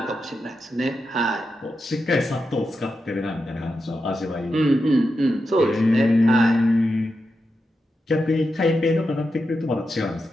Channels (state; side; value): normal; both; correlation 0.88